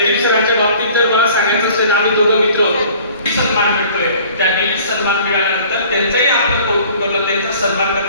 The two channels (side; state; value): both; inverted; correlation -0.50